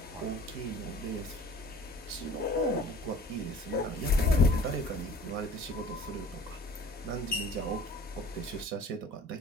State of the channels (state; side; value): normal; both; correlation 0.47